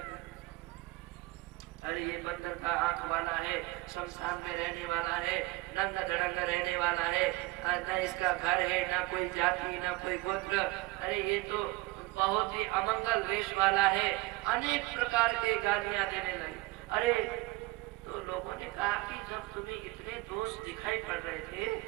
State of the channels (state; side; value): quieter; left; 22.0 dB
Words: अरे ये बंदर का आंख वाला है, शमशान में रहने वाला है, नंगा धड़ंगा रहने वाला है, न इसका घर है, न कोई जाति, न कोई गोत्र, अरे ये तो बहुत ही अमंगल वेश वाला है। अनेक प्रकार के गालियां देने लगे। अरे तो लोगों ने कहा कि जब तुम्हें इतने दोष दिखाई पड़ रहे थे